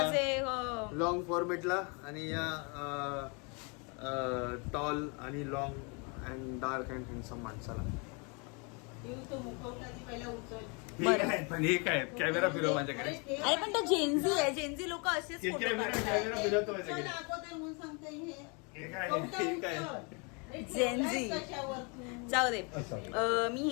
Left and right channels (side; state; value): right; quieter; 33.2 dB